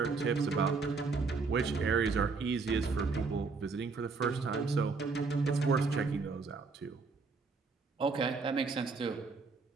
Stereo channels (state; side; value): quieter; left; 4.4 dB